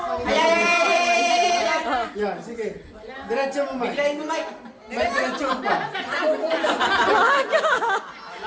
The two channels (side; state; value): both; identical; correlation 1.00